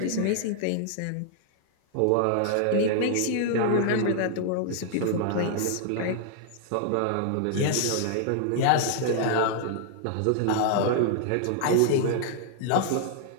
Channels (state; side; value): different; both; correlation 0.00